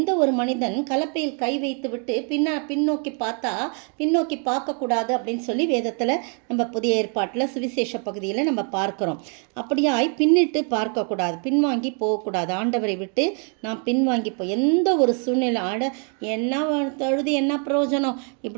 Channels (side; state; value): left; quieter; 39.8 dB